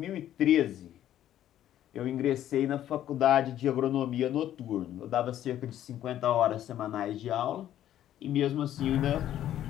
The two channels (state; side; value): quieter; right; 11.8 dB